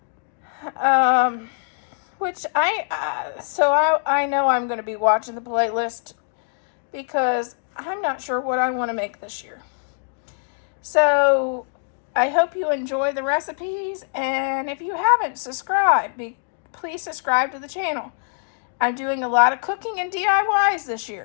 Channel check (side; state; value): right; silent; digital silence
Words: Which I know I'm going to be watching the playlist because I'm not sure what I want to make this year. So I hope you enjoy the recipes, and if you haven't subscribed, please subscribe to the channel. I'm doing a lot of cooking and DIYs this